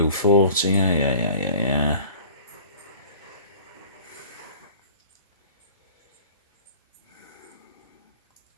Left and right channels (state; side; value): inverted; both; correlation -0.44